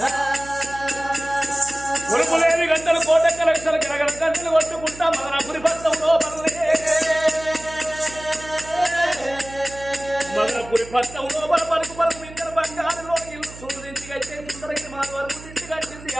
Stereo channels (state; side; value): noise; right; hum, 17 dB below the sound